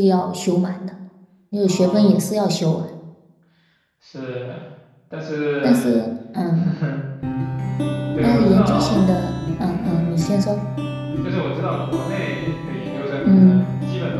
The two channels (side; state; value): both; identical; correlation 1.00